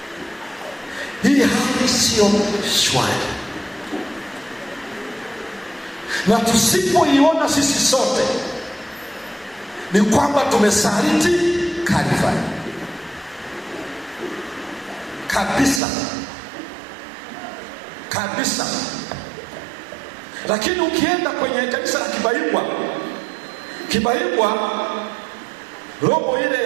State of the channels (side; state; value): left; drops out; at 15.8 s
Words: Hii hali sio shwari, na tusipoiona sisi sote ni kwamba tumesaliti Kalvari kabisa kabisa. Lakini ukienda kwenye kanisa la Kibaigwa, robo ile